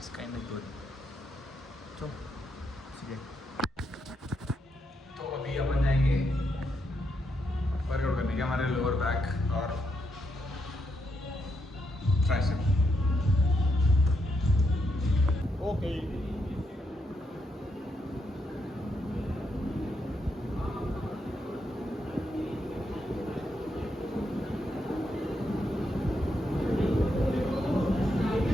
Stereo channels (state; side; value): normal; both; correlation 0.80